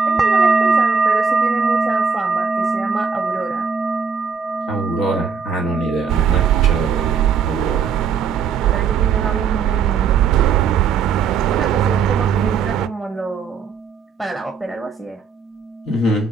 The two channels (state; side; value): quieter; left; 6.0 dB